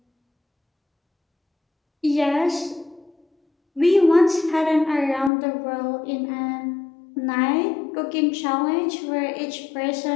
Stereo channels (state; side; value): drops out; right; at 5.3 s